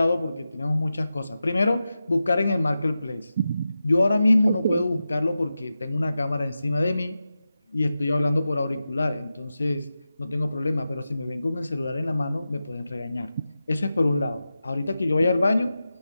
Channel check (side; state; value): both; inverted; correlation -0.92